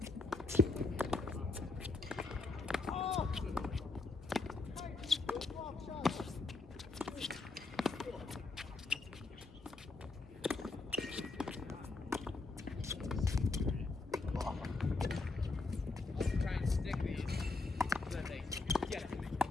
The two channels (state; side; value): quieter; right; 3.6 dB